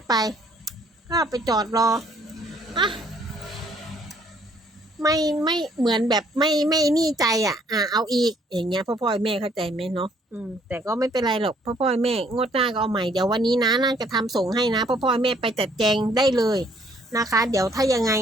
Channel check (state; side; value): normal; both; correlation 0.64